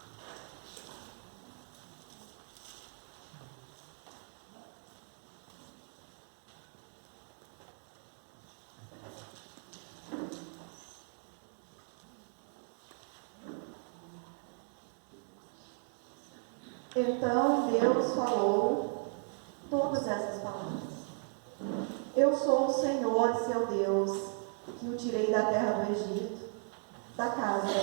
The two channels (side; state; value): left; silent; 53 dB below the other